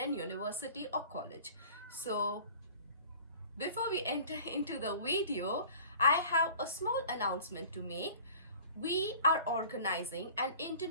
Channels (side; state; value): both; inverted; correlation -0.45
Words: a university or college. So before we enter into the video, I have a small announcement to make. We are organizing an